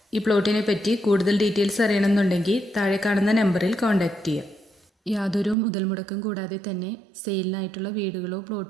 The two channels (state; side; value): drops out; left; at 5.6 s